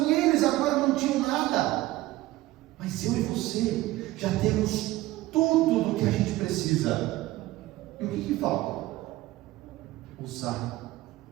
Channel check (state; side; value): quieter; left; 17.4 dB